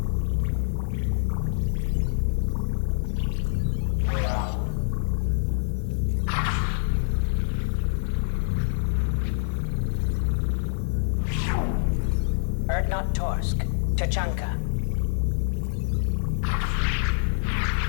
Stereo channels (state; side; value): silent; right; digital silence